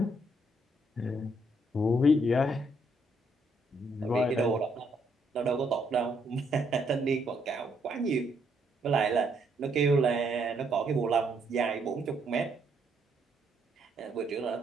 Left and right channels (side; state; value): both; normal; correlation 0.72